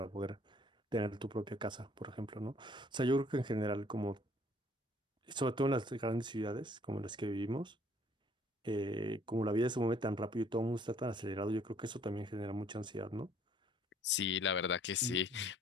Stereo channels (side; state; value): both; normal; correlation 0.60